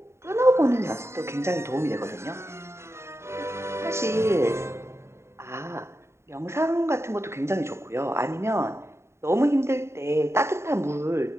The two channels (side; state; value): left; late; 0.13 ms